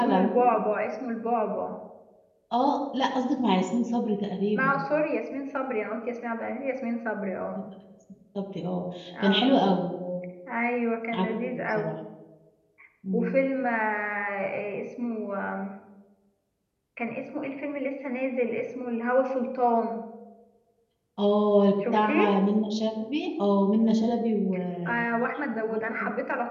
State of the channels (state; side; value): identical; both; correlation 1.00